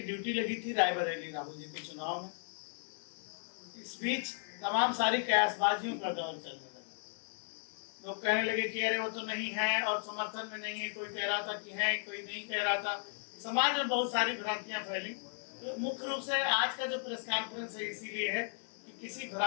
ड्यूटी लगी थी रायबरेली राहुल जी के चुनाव में। इस बीच तमाम सारी कयासबाजियों का दौर चलने लगा। लोग कहने लगे कि अरे वो तो नहीं है और समर्थन में नहीं है, कोई कह रहा था कि है, कोई नहीं कह रहा था। समाज में बहुत सारी भ्रांतियां फैली। तो मुख्य रूप से आज का जो प्रेस कॉन्फ्रेंस है इसीलिए है कि किसी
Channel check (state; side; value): silent; right; digital silence